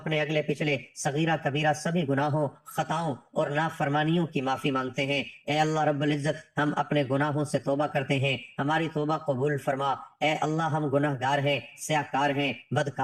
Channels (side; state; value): both; identical; correlation 1.00